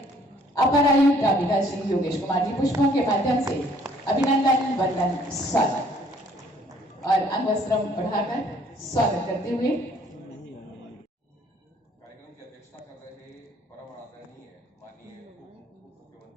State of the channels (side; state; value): both; normal; correlation 0.61